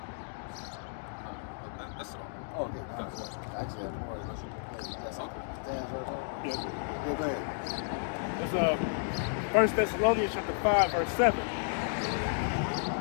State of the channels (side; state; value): right; silent; digital silence